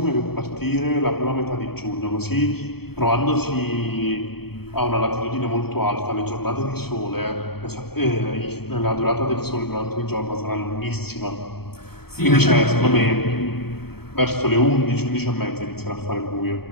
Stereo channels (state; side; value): late; right; 0.96 ms